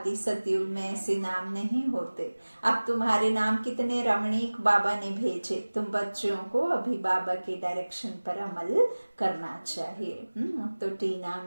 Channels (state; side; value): inverted; both; correlation -1.00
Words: सतयुग में ऐसे नाम नहीं होते। अब तुम्हारे नाम कितने रमणीक बाबा ने भेजे। तुम बच्चों को अभी बाबा के डायरेक्शन पर अमल करना चाहिए। तो टीना,